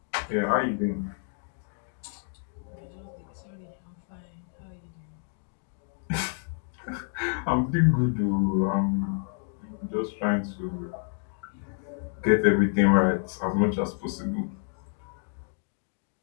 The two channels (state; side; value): silent; right; 59 dB below the other